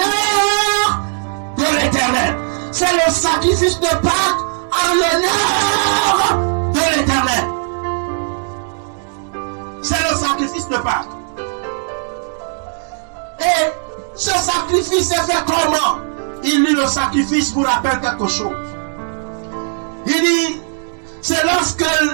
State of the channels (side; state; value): left; silent; digital silence